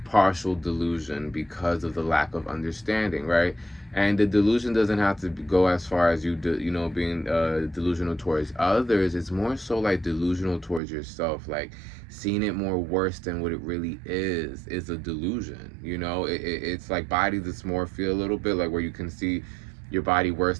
partial delusion because of the lack of understanding, right? And the delusion doesn't have to go as far as you know, being delusional towards others. It's more so like delusional towards yourself, like seeing it more worse than what it really is a delusion. You know, it's like body dysmorphia a little bit, like where you can see your body worse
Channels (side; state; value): left; drops out; at 10.8 s